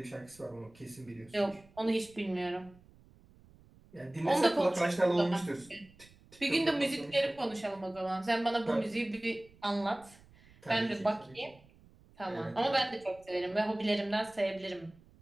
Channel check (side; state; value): right; noise; rumble, 26 dB below the sound